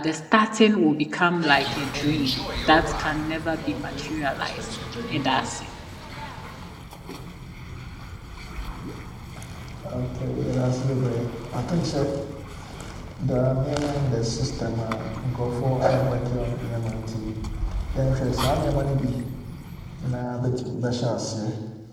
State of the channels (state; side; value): identical; both; correlation 1.00